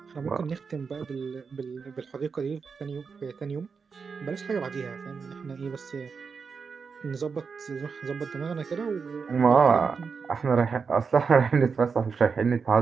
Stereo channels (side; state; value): left; quieter; 5.4 dB